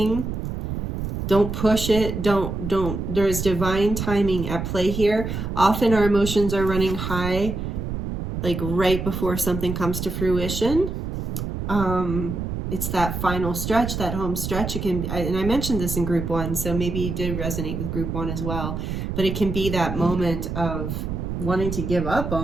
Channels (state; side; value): noise; right; rumble, 4 dB below the sound